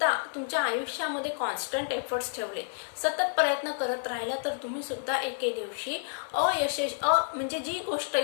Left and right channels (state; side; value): silent; right; digital silence